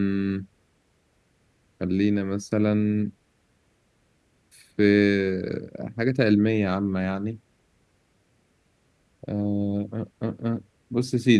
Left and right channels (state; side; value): identical; both; correlation 1.00